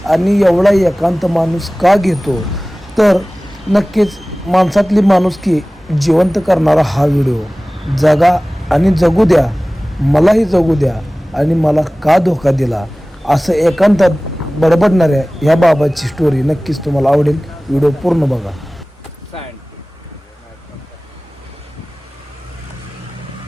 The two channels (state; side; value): normal; both; correlation 0.98